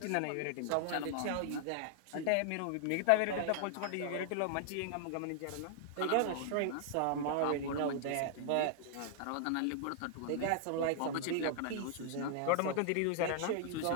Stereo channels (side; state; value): both; different; correlation 0.00